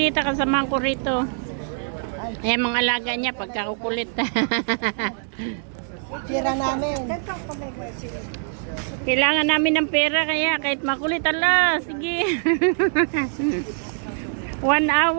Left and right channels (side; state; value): left; silent; 62 dB below the other